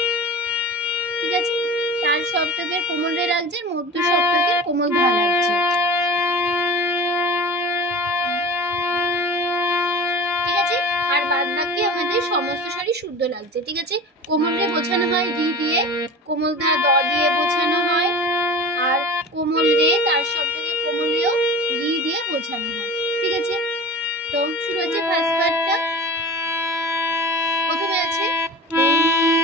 ঠিক আছে? তার সপ্তকের কোমল রে লাগছে, মধ্য সপ্তকের কোমল ধা লাগছে, ঠিক আছে? আর বাদ বাকি আমাদের সমস্ত স্বরই শুদ্ধ লাগছে, ঠিক আছে? কোমল রে বোঝানো হয় রি দিয়ে, কোমল ধা দ দিয়ে বোঝানো হয়, আর কোমল রে তার সপ্তকের কোমল রেও রি দিয়ে বোঝানো হয়, ঠিক আছে? তো শুরু হচ্ছে ফার্স্ট পার্টটা। প্রথমে আছে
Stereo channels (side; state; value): both; normal; correlation 0.36